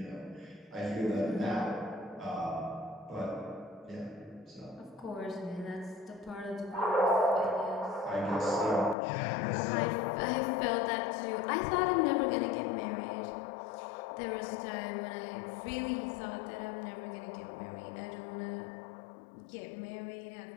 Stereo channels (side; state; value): right; drops out; at 9.0 s